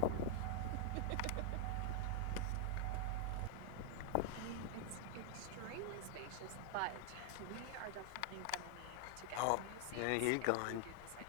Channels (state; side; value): different; both; correlation 0.00